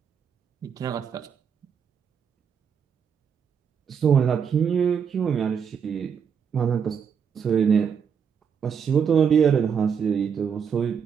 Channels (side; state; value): left; quieter; 7.0 dB